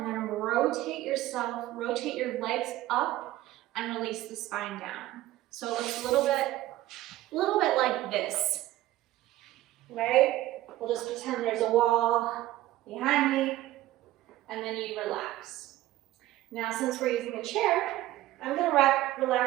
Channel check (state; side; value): quieter; left; 15.6 dB